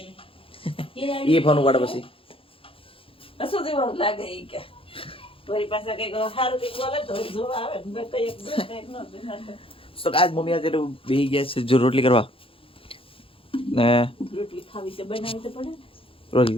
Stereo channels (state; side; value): late; right; 0.26 ms